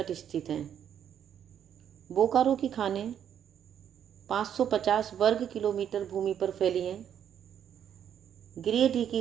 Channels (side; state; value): left; quieter; 9.3 dB